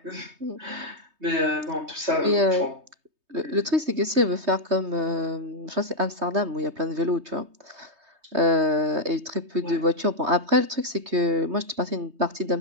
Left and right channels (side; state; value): left; late; 3.2 ms